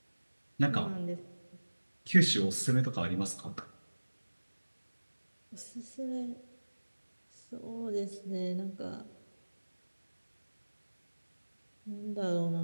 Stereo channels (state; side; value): inverted; both; correlation -1.00